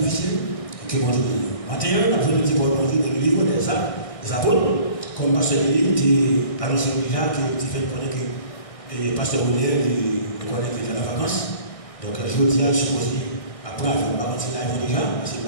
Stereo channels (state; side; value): late; right; 1.6 ms